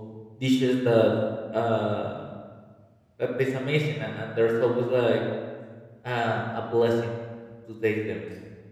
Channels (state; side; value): identical; both; correlation 1.00